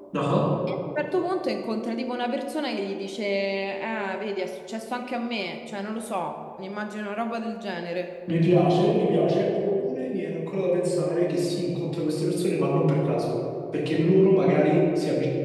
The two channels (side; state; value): both; identical; correlation 1.00